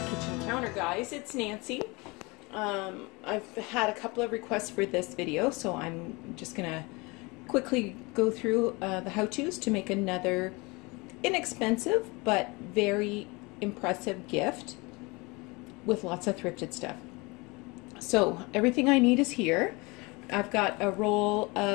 counter, guys. It's Nancy. I've had a couple of requests for this video, so I'm just gonna quickly go through the how-tos to make another inexpensive but very impressive gift with lots of thrifted stuff. So everything I need is here. I've got a roll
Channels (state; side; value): quieter; right; 25.9 dB